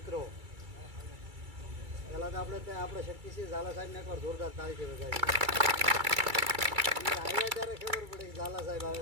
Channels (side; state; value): left; late; 2.3 ms